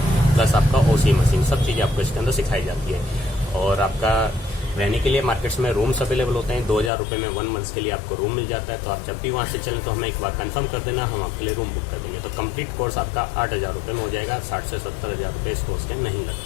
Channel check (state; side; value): drops out; right; at 6.9 s